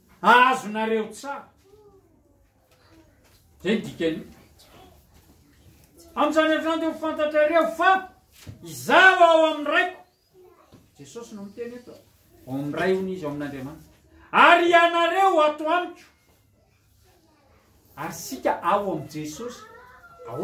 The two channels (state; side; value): identical; both; correlation 1.00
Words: azonareo tsara. Zay dikany. Amin'izany andro zany dia ho fantatrareo fa izaho ao amin'ny raiko. Jesosy no miteny eto, ao amin'ny ray hony izy ao amin'Andriamanitra. Ary ianareo ato amiko. Ary sika ao amin'ny Jesosy.